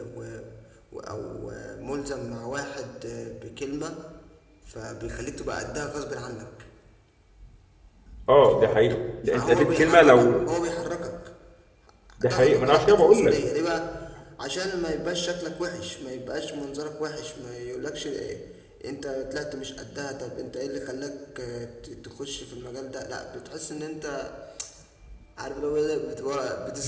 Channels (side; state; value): both; identical; correlation 1.00